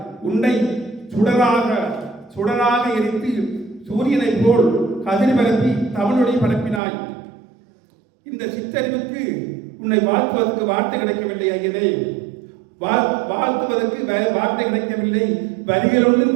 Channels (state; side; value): drops out; left; at 6.8 s